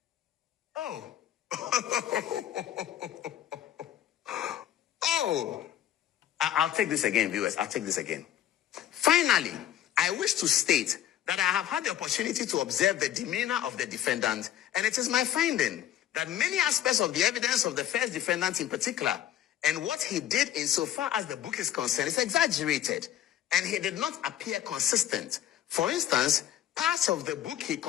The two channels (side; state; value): right; quieter; 11.5 dB